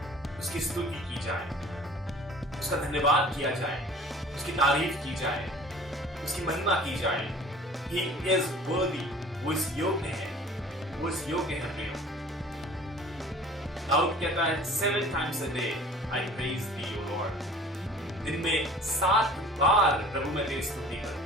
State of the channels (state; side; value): normal; both; correlation 0.47